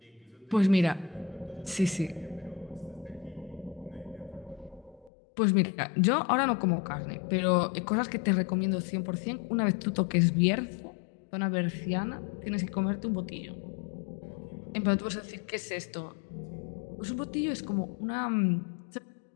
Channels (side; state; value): right; drops out; at 5.1 s